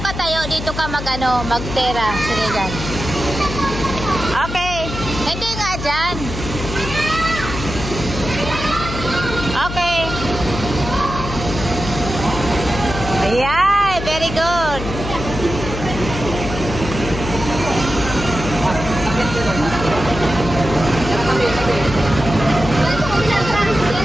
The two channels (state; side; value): noise; left; hum, 7 dB below the sound